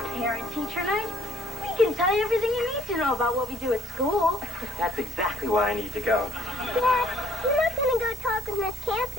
parent-teacher night. We can tell you everything you need to know about what we do at school. That's exactly why I need to go. Dad, you're not going to go talk with Miss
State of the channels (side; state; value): both; normal; correlation 0.63